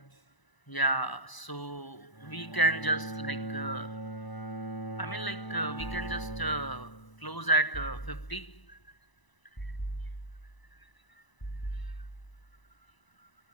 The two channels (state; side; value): late; right; 1.0 ms